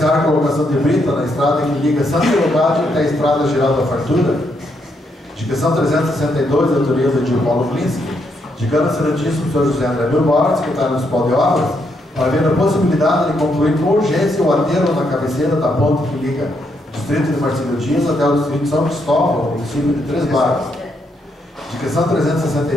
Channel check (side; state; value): both; normal; correlation 0.77